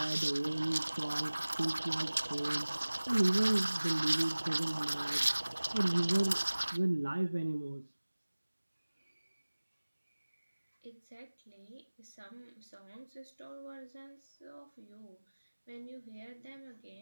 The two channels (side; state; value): both; inverted; correlation -1.00